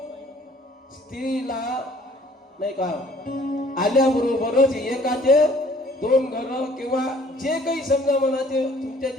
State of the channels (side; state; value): both; normal; correlation 0.57